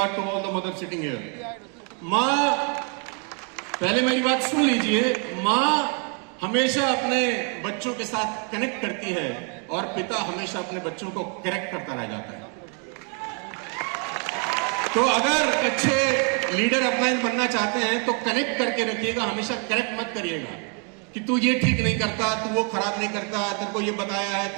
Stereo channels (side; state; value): left; quieter; 37.1 dB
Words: to all the mother sitting here, मां, पहले मेरी बात सुन लीजिए, मां हमेशा अपने बच्चों के साथ कनेक्ट करती है और पिता हमेशा अपने बच्चों को करेक्ट करता रह जाता है। तो अगर अच्छे लीडर अपलाइन बनना चाहते हैं तो कनेक्ट करके रखिएगा, हमेशा करेक्ट मत करिएगा कि तू ये ठीक नहीं करता, तू वो खराब नहीं करता, तेरे को ये बताया है,